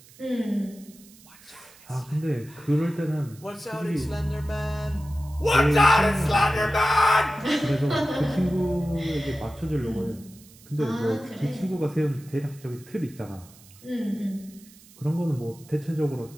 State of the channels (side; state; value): right; noise; hiss, 24 dB below the sound